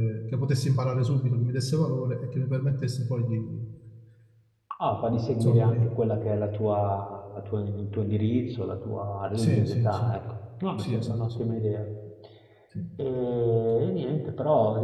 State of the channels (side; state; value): both; identical; correlation 1.00